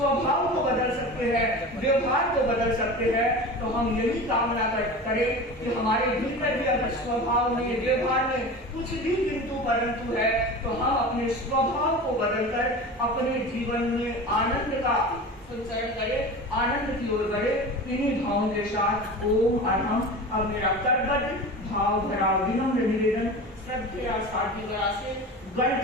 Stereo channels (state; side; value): normal; both; correlation 0.32